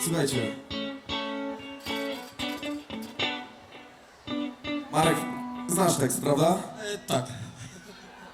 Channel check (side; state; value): both; identical; correlation 1.00